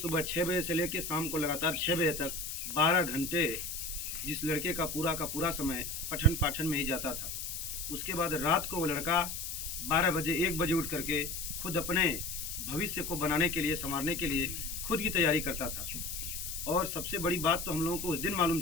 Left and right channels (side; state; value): left; noise; hiss, 5 dB below the sound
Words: 6 बजे से लेकर शाम को लगातार 6 बजे तक 12 घंटे जिस लड़के का पूरा समय पठन पाठन में ही जाता था। उसके बाद रात को वो लड़का 12 बजे 1 बजे उठ करके खुद अपने भविष्य को बनाने के लिए, संवारने के लिए खुद की तैयारी करता था। और सबसे बड़ी बात तो हम लोगों को उस दिन मालूम